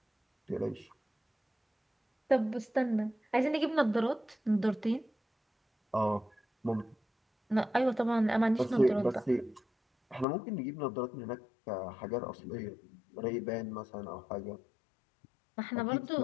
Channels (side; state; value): right; drops out; at 10.2 s